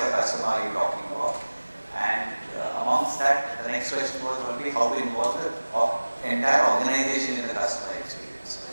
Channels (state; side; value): inverted; both; correlation -1.00